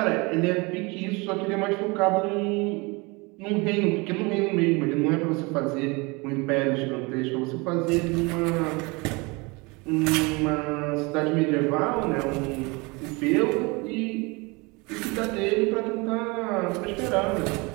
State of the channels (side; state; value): left; quieter; 26.8 dB